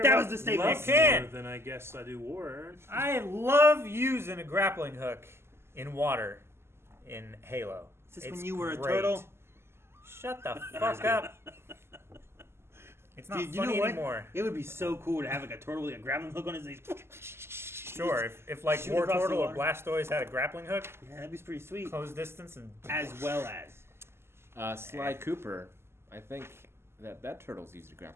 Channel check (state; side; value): late; left; 0.12 ms